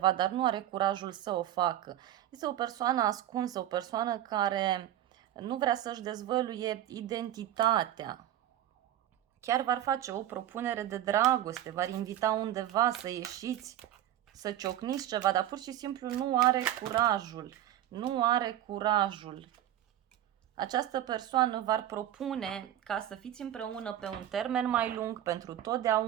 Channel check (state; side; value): quieter; left; 12.3 dB